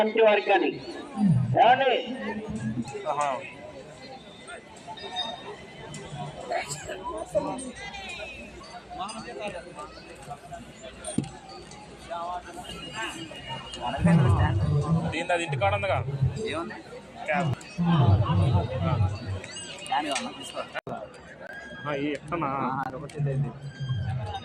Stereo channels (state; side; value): identical; both; correlation 1.00